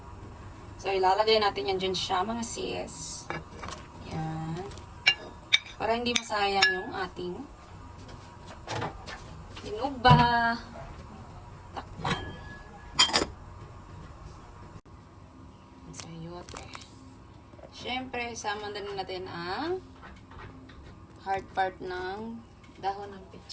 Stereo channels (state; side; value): identical; both; correlation 1.00